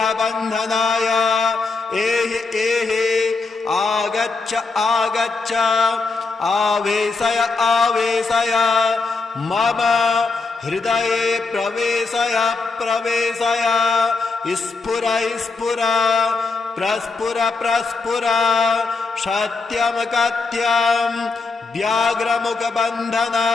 एहि एहि आगच्छ आगच्छ आवेशय आवेशय मम हृदये प्रवेशय प्रवेशय स्फुर स्फुर प्रस्फुर प्रस्फुर सत्यं कथ्यं व्याघ्रमुखबन्धन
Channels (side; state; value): right; quieter; 4.1 dB